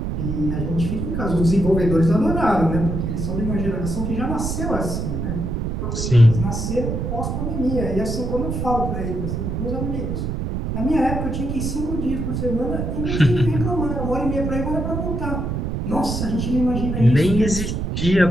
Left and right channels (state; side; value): noise; right; rumble, 2 dB below the sound